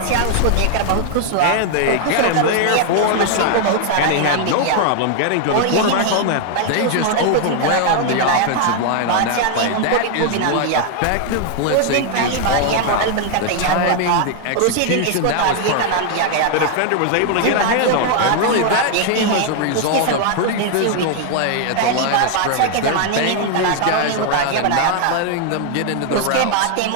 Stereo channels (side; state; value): both; different; correlation 0.00